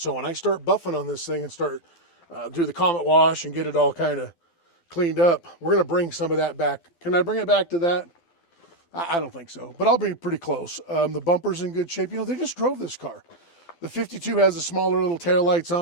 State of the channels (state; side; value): late; right; 12 ms